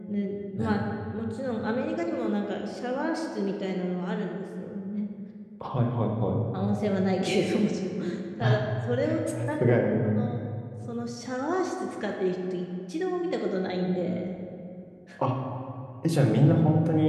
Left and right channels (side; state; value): both; identical; correlation 1.00